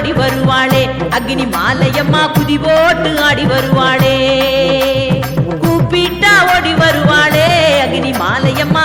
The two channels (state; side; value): identical; both; correlation 1.00